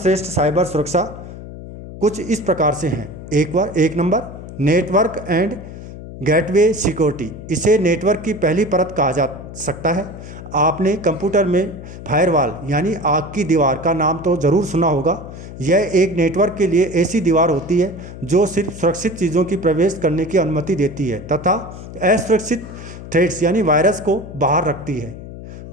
साइबर सुरक्षा कुछ इस प्रकार से हैं। एक number, network and gateway security. इसे नेटवर्क की पहली परत कहा जा सकता है। आपने कंप्यूटर में फायरवॉल यानी आग की दीवार का नाम तो ज़रूर सुना होगा। यह एक नेटवर्क के लिए ऐसी दीवार होती है जो सिर्फ सुरक्षित चीज़ों की प्रवेश करने की अनुमति देती है तथा असुरक्षित थ्रेड्स यानी वायरस को बाहर रखती है,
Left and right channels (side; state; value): left; noise; hum, 13 dB below the sound